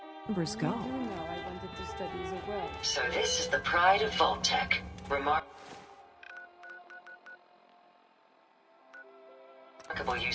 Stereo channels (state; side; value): identical; both; correlation 1.00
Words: Numbers go. I wanted to study the world. So this is the pride of Vault-Tec. Remarkable